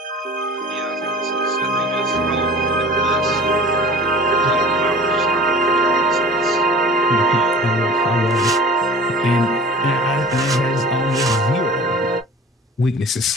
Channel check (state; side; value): normal; both; correlation 0.43